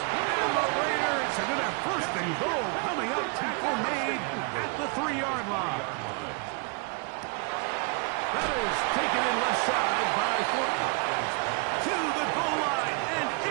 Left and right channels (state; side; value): quieter; left; 35.0 dB